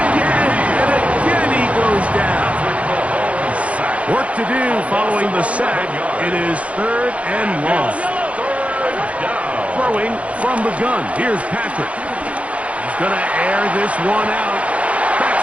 again, and again he goes down. Work to do following the sack. It is 3rd and long. Throwing from the gun. Here's Patrick. He's going to air this one out.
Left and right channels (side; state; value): left; late; 0.064 ms